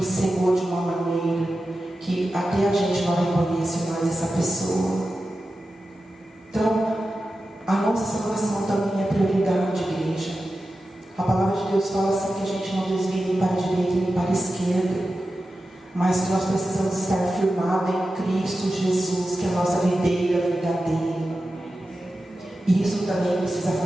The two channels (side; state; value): both; normal; correlation 0.92